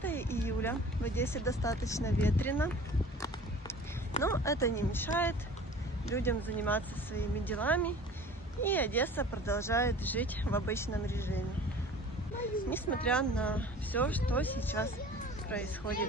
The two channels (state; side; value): normal; both; correlation 0.44